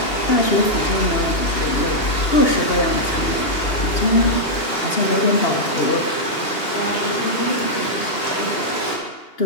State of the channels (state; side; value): late; right; 2.8 ms